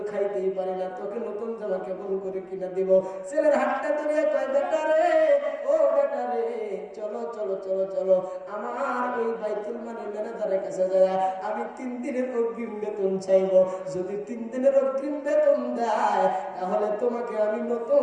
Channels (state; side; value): identical; both; correlation 1.00